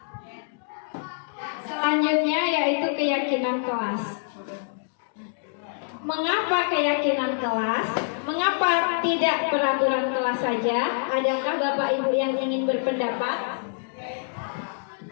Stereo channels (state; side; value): silent; right; digital silence